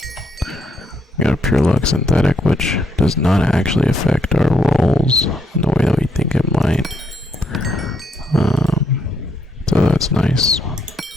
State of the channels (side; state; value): both; normal; correlation 0.75